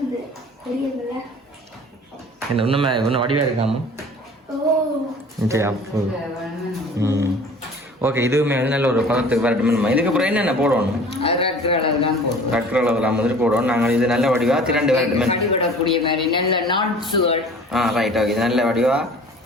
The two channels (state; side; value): normal; both; correlation 0.45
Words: என்ன இன்னும் வடிவா இருக்காம சரி அப்போ ஓகே இதுவுமே வந்து நல்ல ஒரு பதத்துக்கு வரட்டுமே இதுக்கப்புறம் என்னென்ன போடணும் ரக்கு அளவுலாம் வந்துட்டு போடுவோம் நாங்கள் இது நல்ல வடிவா திரண்டு வரட்டுமே ரைட் ஓகே இது நல்ல வடிவா